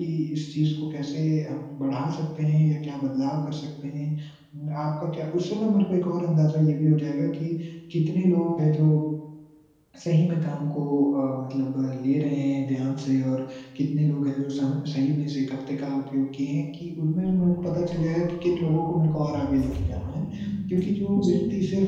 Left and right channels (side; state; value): both; identical; correlation 1.00